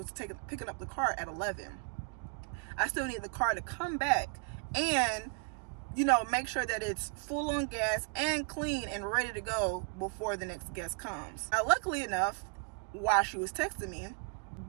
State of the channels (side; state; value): left; quieter; 38.1 dB